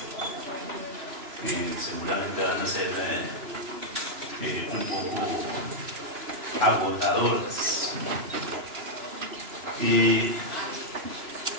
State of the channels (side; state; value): left; late; 3.0 ms